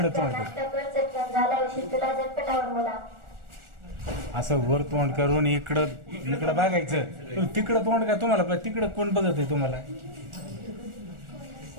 तोंड कर. नाश्ता कर, चटकन झाला उशीर तुला झटपटावर मला. असं वर तोंड करून इकडं बघायचं. तिकडं तोंड का तुम्हाला तिकडं कोण बघत आहे तुम्हाला?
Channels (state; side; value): late; left; 1.4 ms